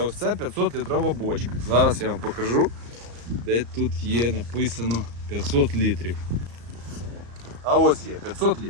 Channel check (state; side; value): late; left; 34 ms